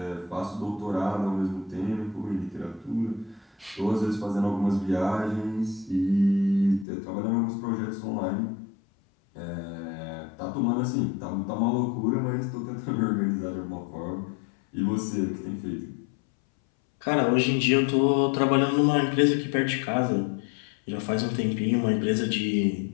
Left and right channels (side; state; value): right; drops out; at 6.9 s